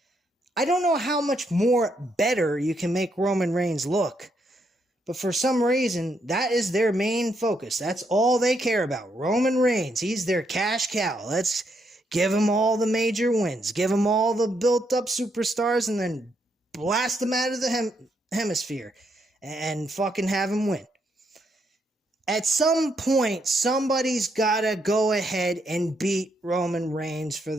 I don't know how much more better you can make Roman Reigns look, but for some reason, that is their main focus. That's all they care about. Roman Reigns, he's their cash cow. Let's give him all the major wins, give him all the built-up superstars, and then blast them out of the hemisphere and fucking have him win. At some point, somebody's got to go ahead and beat Roman Reigns for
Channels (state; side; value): normal; both; correlation 0.77